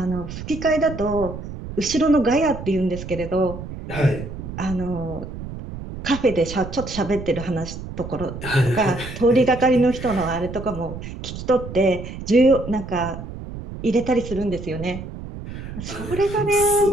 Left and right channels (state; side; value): noise; right; rumble, 10 dB below the sound